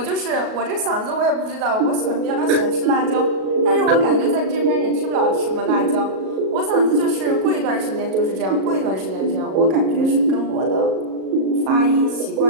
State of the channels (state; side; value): late; left; 37 ms